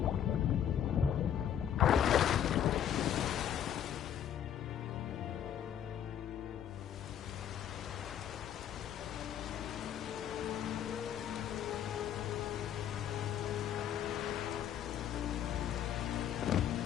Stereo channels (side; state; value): right; quieter; 9.8 dB